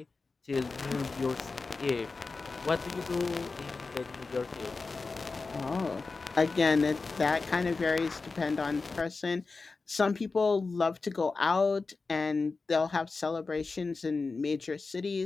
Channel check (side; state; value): right; quieter; 4.1 dB